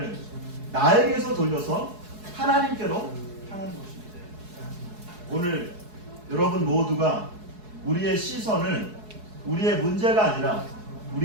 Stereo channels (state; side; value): late; left; 4.7 ms